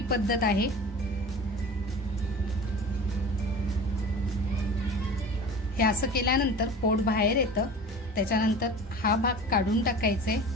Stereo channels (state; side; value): normal; both; correlation 0.37